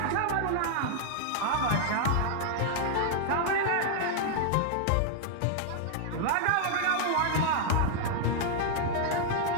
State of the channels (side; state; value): both; different; correlation 0.00